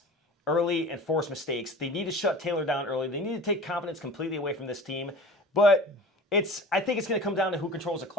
early and force mistakes. They need to shut Taylor down early. They need to take confidence completely away from this team. But I think it's going to come down to who controls the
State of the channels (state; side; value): normal; both; correlation 0.38